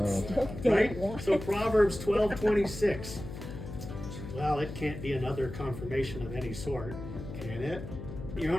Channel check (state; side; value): noise; left; hum, 9 dB below the sound